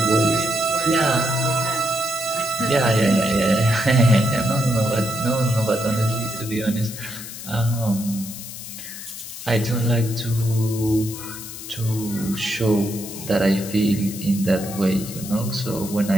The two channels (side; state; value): left; noise; hiss, 11 dB below the sound